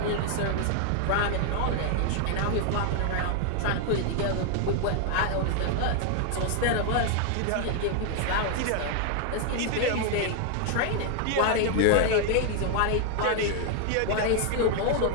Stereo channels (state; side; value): different; both; correlation 0.00